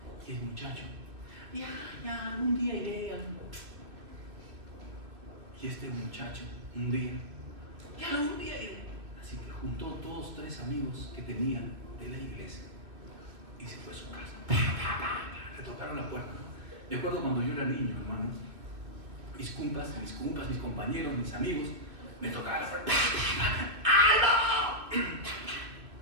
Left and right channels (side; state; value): left; late; 2.4 ms